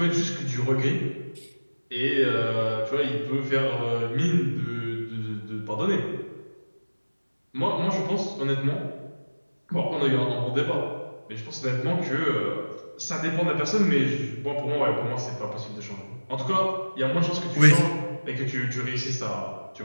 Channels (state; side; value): inverted; both; correlation -1.00